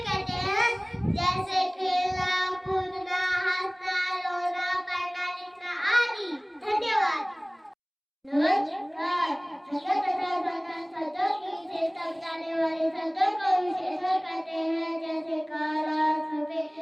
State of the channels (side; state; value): both; identical; correlation 1.00